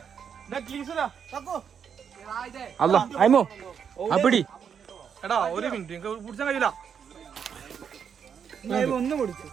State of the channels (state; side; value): quieter; left; 7.4 dB